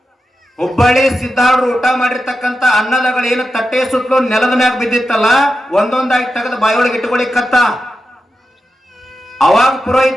ಹುಬ್ಬಳ್ಳಿ ಸಿದ್ದಾರ್ಡ್ರು ಊಟ ಮಾಡಿರ್ತಕ್ಕಂತ ಅನ್ನದಗಳೇನು ತಟ್ಟೆ ಸುತ್ತಲೂ ನೆಲದ ಮ್ಯಾಗ ಬಿದ್ದಿತ್ತಲ್ಲ, ಒಂದೊಂದಾಗಿ ತೆಗೆದು ಬಾಯೊಳಗೆ ಇಟ್ಕೊಳಿಕತ್ತ. ಅವಾಗ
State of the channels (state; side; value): normal; both; correlation 0.90